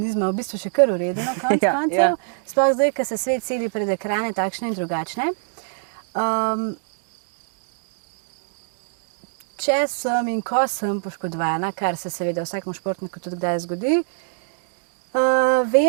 v bistvu še kar v redu na koncu koncev. Sploh zdaj, ko se svet seli pred ekrane takšne in drugačne. Če sem in ko sem poškodovana, kar se seveda vsakemu športniku tudi kdaj zgodi,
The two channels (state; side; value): silent; left; digital silence